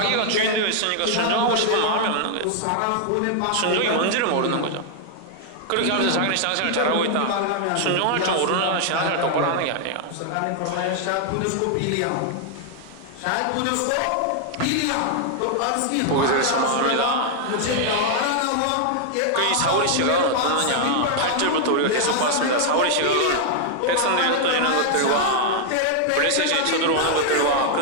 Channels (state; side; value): different; both; correlation 0.00